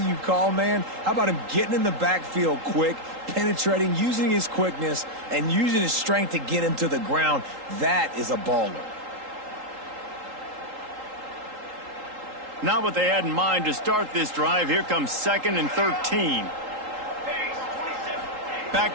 call, man, how about him getting in the backfield quick, penetrating, using his quickness, and using his strength to get him to the ground? That is a baller. Not what they had in mind to start this drive. Here comes 2nd and 13. Back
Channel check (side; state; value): left; late; 3.8 ms